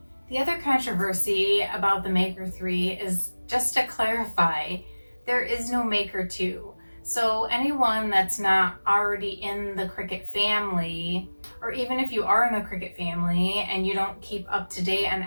The other controversy about the Maker 3 is, just to clarify, there is no Maker 2. So anyone that's not already in the Cricut family, or even if you are in the Cricut family and you don't keep up to date on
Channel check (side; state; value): both; inverted; correlation -1.00